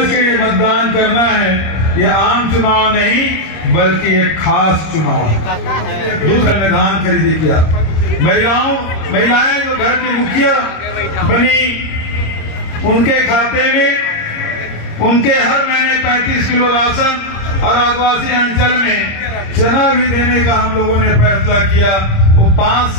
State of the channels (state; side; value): late; right; 26 ms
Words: के मतदान करना है। ये आम चुनाव नहीं बल्कि एक खास चुनाव है। दूसरा मैदान खरीदी किया, महिलाएं जो घर की मुखिया बनी, उनके खाते में उनके हर महीने 35 किलो राशन और आदिवासी अंचल में चना भी देने का हम लोगों ने फैसला किया। वो 5